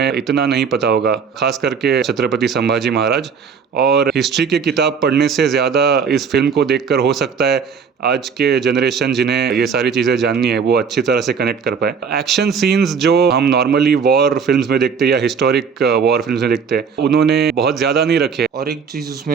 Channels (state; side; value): quieter; left; 6.2 dB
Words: इतना नहीं पता होगा, खास करके छत्रपति संभाजी महाराज। और हिस्ट्री की किताब पढ़ने से ज़्यादा इस फिल्म को देखकर हो सकता है आज के जनरेशन जिन्हें ये सारी चीज़ें जाननी है वो अच्छी तरह से कनेक्ट कर पाए। एक्शन सीन्स जो हम नॉर्मली वॉर फिल्म्स में देखते हैं या हिस्टोरिक वॉर फिल्म्स में देखते हैं, उन्होंने बहुत ज़्यादा नहीं रखे। और एक चीज़